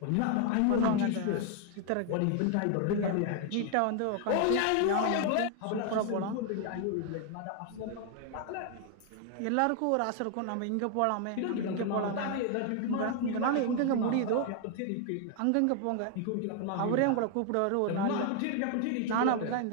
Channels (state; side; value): different; both; correlation 0.00